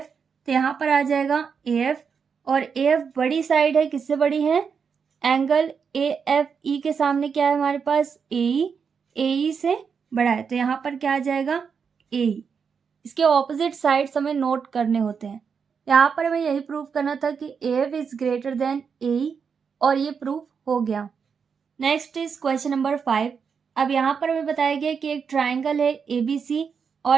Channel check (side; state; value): left; quieter; 6.2 dB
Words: तो यहाँ पर आ जाएगा ए एफ और ए एफ बड़ी साइड है। किससे बड़ी है? एंगल ए एफ ई के सामने क्या है हमारे पास? ए ई से बड़ा है, तो यहाँ पर क्या आ जाएगा? ए ई। इसके ऑपोजिट साइड्स हमें नोट करने होते हैं। यहाँ पर हमें यही प्रूव करना था कि A F is greater than A E और ये प्रूफ हो गया। Next is question number 5। अब यहाँ पर हमें बताया गया कि एक ट्राइंगल है ए बी सी